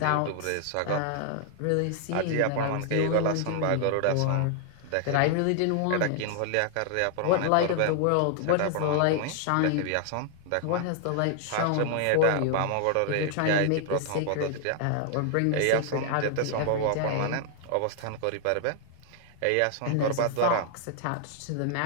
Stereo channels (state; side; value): different; both; correlation 0.00